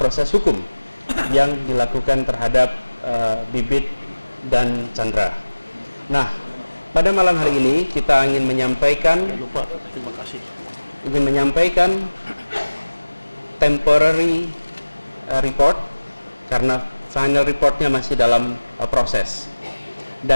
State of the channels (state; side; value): inverted; both; correlation -1.00